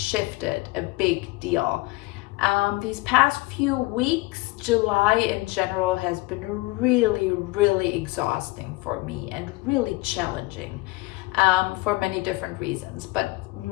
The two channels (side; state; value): right; quieter; 21.7 dB